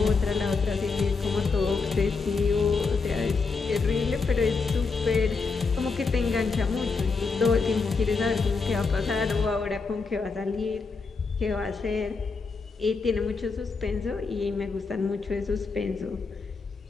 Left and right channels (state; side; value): quieter; right; 4.5 dB